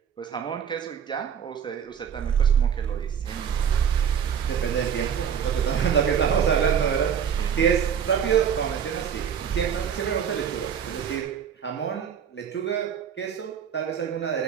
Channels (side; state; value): left; quieter; 7.9 dB